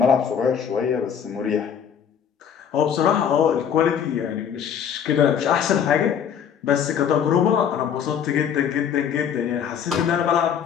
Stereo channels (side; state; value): right; quieter; 8.1 dB